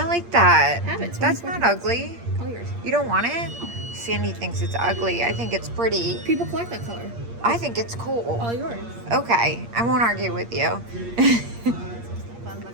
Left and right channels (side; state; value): left; late; 8.6 ms